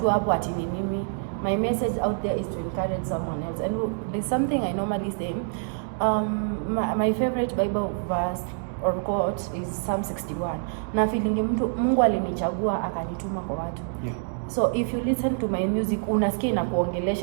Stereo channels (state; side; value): silent; left; digital silence